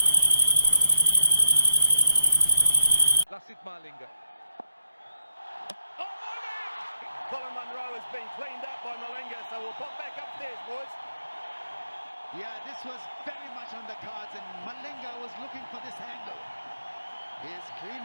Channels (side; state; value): both; inverted; correlation -0.78